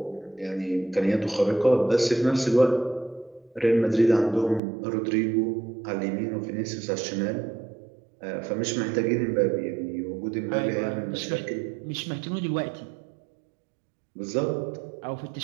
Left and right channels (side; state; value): left; drops out; at 4.6 s